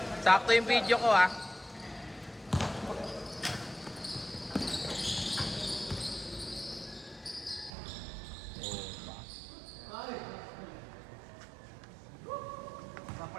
Sakto yung video ko ah.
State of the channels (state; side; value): drops out; left; at 7.7 s